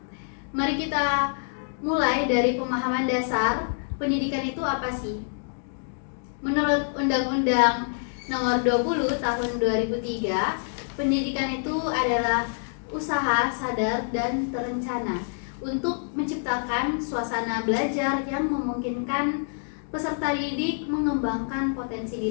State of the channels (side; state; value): right; silent; digital silence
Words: mari kita mulai dari pemahaman dasar pendidikan itu apa sih? Menurut Undang-Undang Nomor 20 Tahun 2003, pendidikan itu adalah usaha sadar dan terencana untuk menciptakan suasana belajar yang memungkinkan peserta didik mengembangkan potensi